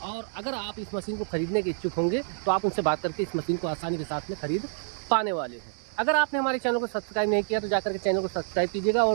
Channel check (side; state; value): left; silent; 60 dB below the other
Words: और अगर आप इस मशीन को खरीदने के इच्छुक होंगे तो आप उनसे बात करके इस मशीन को आसानी के साथ में खरीद पाने वाले हैं। अगर आपने हमारे चैनल को सब्सक्राइब नहीं किया तो जाकर के चैनल को सब्सक्राइब कीजिएगा